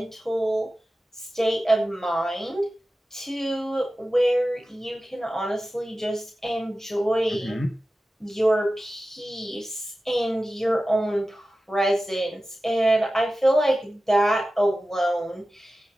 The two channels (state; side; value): normal; both; correlation 0.95